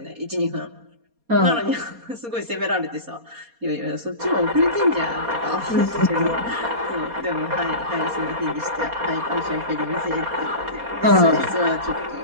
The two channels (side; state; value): left; late; 4.2 ms